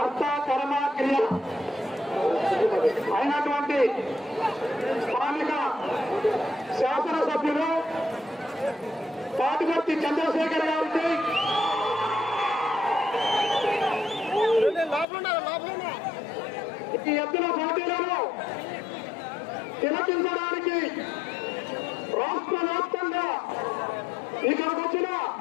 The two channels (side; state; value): right; drops out; at 15.1 s